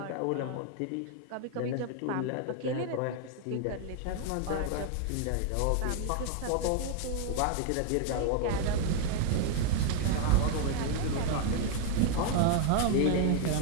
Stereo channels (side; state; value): both; different; correlation 0.00